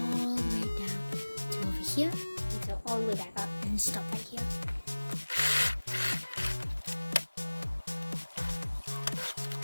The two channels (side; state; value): both; inverted; correlation -1.00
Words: the way down to over here, and sew all the way back up and stop right here.